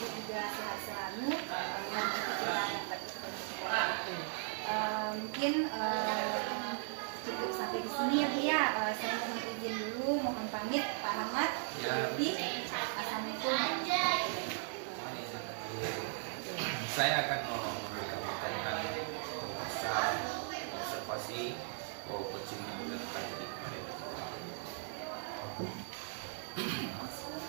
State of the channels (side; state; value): left; silent; 53 dB below the other